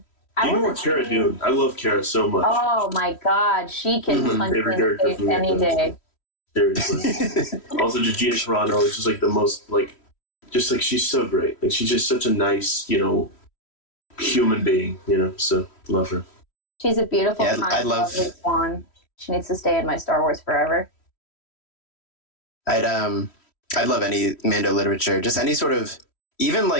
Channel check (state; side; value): late; right; 3.1 ms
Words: You know what Cara doing? I love Cara so much. Oh my god, she can punch me in the face any day. Seriously. Also, just Gina Carano is just like the most, she's so great. Like, she's just such a nice, human being, so love her. She's a beautiful, I love lovely swan. She needs to stay in my Star Wars forever. I'd love any Mando literature, just any sort of, even